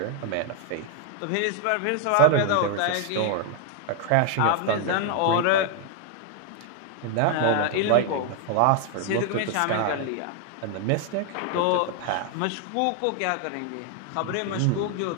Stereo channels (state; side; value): different; both; correlation 0.00